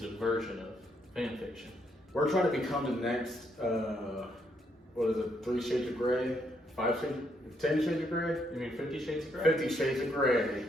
a version of fan fiction. We're trying to become the next, 3 Shades of Grey? 5 Shades? 10 Shades of Grey? You mean 50 Shades of Grey? 50 Shades of Grey.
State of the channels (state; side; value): normal; both; correlation 0.74